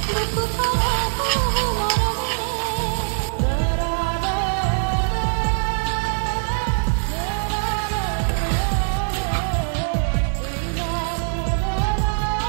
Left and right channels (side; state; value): left; silent; 64 dB below the other